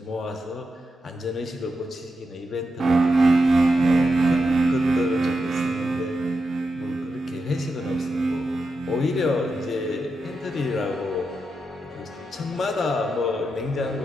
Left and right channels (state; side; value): normal; both; correlation 0.87